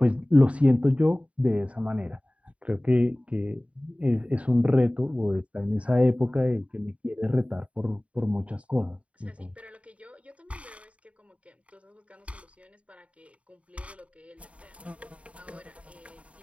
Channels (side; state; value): left; late; 0.064 ms